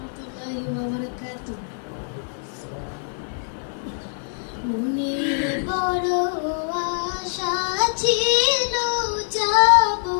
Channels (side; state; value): right; silent; 59 dB below the other